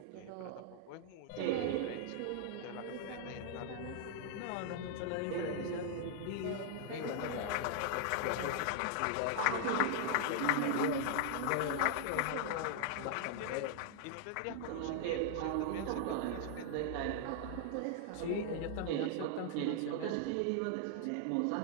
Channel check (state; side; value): different; both; correlation 0.00